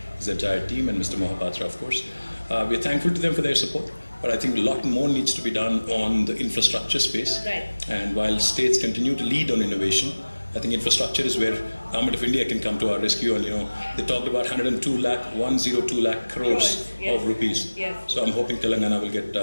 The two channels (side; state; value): both; inverted; correlation -1.00